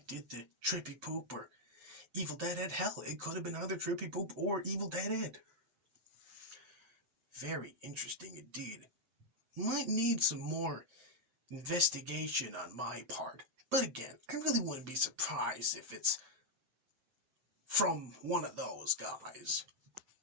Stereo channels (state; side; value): late; left; 7.7 ms